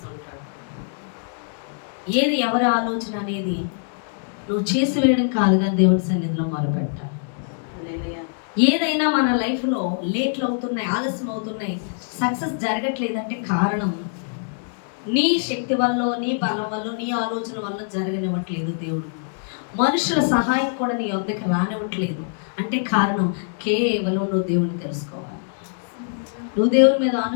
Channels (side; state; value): right; silent; 63 dB below the other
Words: ఏది ఎవరి ఆలోచన అనేది నువ్వు చేసి వేయడం కాదు, కానీ దేవుడి సన్నిధిలో మొరపెట్టాలి. ఏదైనా మన లైఫ్లో లేట్లు అవుతున్నాయి, ఆలస్యం అవుతున్నాయి, సక్సెస్ జరగట్లేదంటే కారణం నీ శక్తి వల్ల, నీ బలం వల్ల, నీ ఆలోచన వల్ల జరగనివ్వట్లేదు దేవుడు. మనుషుల సహాయం కూడా నీ వద్దకు రానివ్వట్లేదు అంటే కారణం కేవలం నువ్వు దేవుని తెలుసుకోవాలి, నువ్వు దేవుని మీద